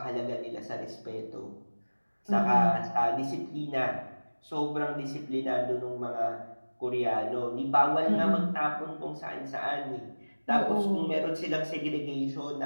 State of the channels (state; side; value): inverted; both; correlation -1.00